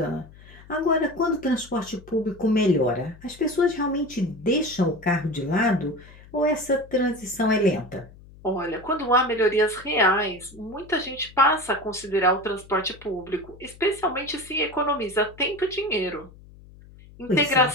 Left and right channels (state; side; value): noise; left; hum, 21 dB below the sound